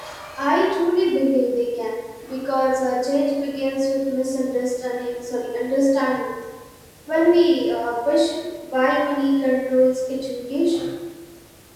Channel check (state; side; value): identical; both; correlation 1.00